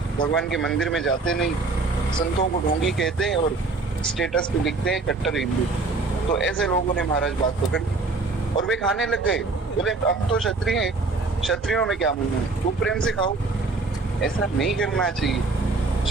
भगवान के मंदिर में जाते नहीं, संतों को ढोंगी कहते हैं और स्टेटस पे लिखते हैं कट्टर हिंदू, तो ऐसे लोगों ने महाराज बात पकड़ और वे खाने लग गए। बोले अब तो क्षत्रिय हैं, क्षत्रियों में क्या मुंह है, वो प्रेम से खाओ। ऐसा नहीं करना चाहिए,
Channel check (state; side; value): quieter; left; 3.7 dB